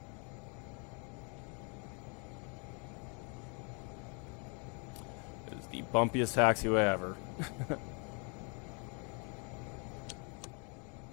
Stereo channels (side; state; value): right; quieter; 35.5 dB